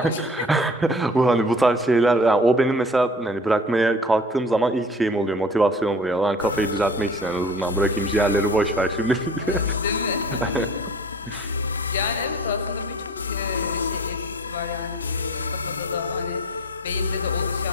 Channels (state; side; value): normal; both; correlation 0.45